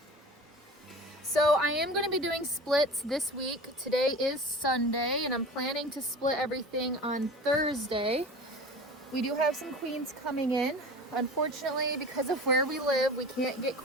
So I am going to be doing splits this week. Today is Sunday, and I'm planning to split everything on Thursday. We do have some queens coming in. Unfortunately, because of where we live, we can't get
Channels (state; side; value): normal; both; correlation 0.36